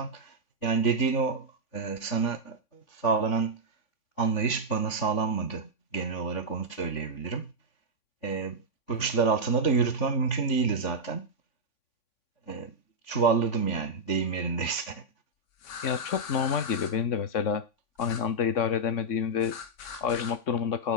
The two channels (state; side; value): late; right; 3.5 ms